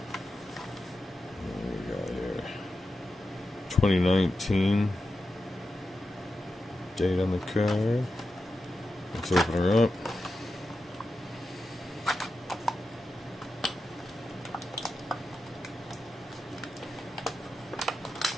What do we got here? 2019. Date on the car. Let's open her up.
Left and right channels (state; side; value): normal; both; correlation 0.90